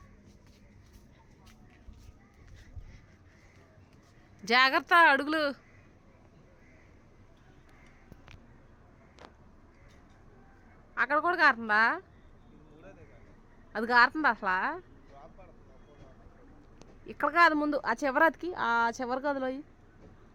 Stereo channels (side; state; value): both; identical; correlation 1.00